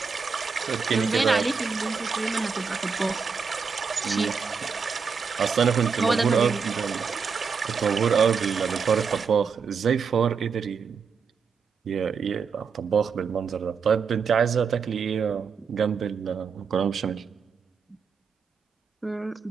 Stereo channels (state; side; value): quieter; left; 5.7 dB